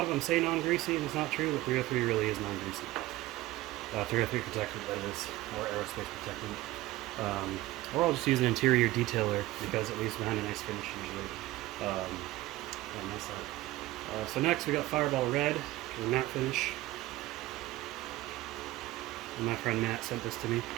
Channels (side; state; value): left; quieter; 17.5 dB